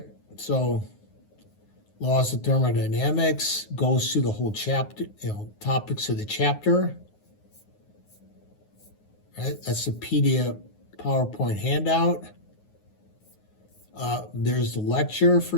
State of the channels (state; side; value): late; right; 9.5 ms